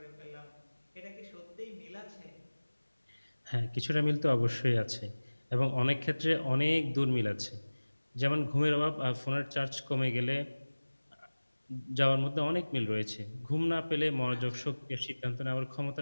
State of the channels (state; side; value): inverted; both; correlation -1.00